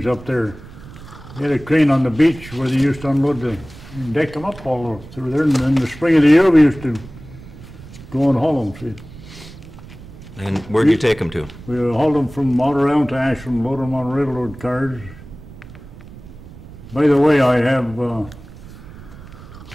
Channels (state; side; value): noise; right; rumble, 17 dB below the sound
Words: up there. They had a crane on the beach where they used to unload and deck them up all through there. And in the spring of the year, we used to go and haul them. See? And where'd you take them to? We hauled them from Outer Island to Ashland, load them on railroad cars. By the way, I have